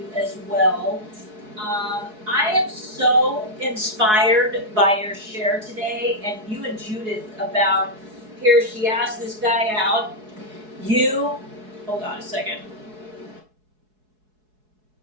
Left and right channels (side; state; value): left; late; 4.7 ms